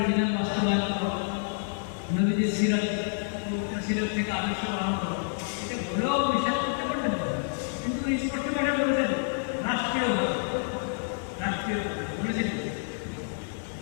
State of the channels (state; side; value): silent; right; 59 dB below the other